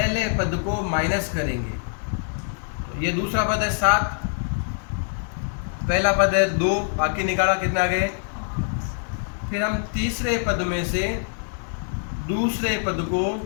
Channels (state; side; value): silent; right; digital silence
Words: पद को माइनस करेंगे। तो ये दूसरा पद है 7, पहला पद है 2, बाकी निकाला कितना आ गए। फिर हम तीसरे पद में से दूसरे पद को